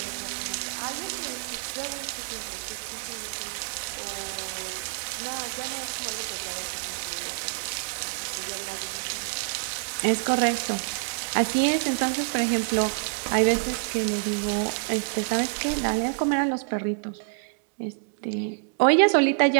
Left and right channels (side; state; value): left; silent; digital silence